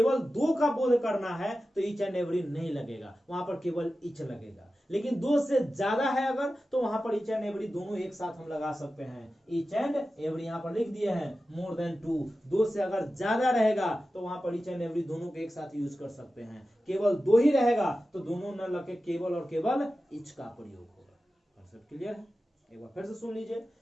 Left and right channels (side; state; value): both; normal; correlation 0.93